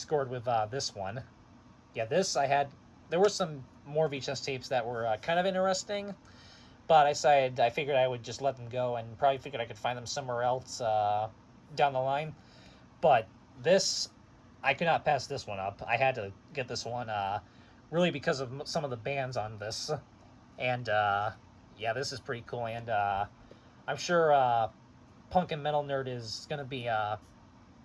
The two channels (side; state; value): both; identical; correlation 1.00